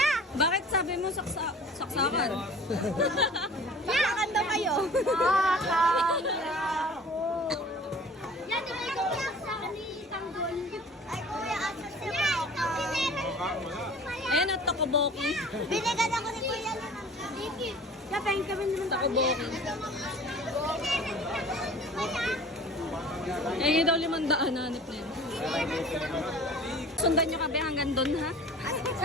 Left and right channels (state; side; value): normal; both; correlation 0.44